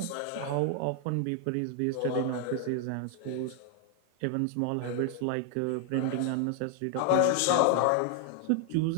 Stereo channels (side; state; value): both; different; correlation 0.00